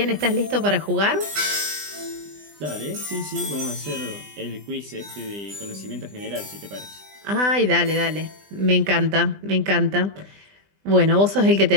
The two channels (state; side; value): late; left; 20 ms